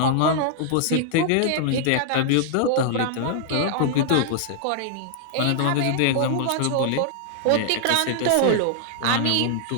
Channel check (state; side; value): different; both; correlation 0.00